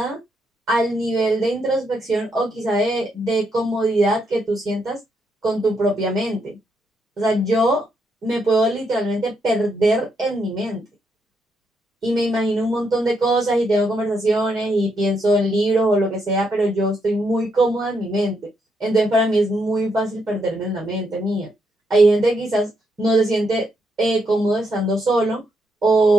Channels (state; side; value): normal; both; correlation 0.78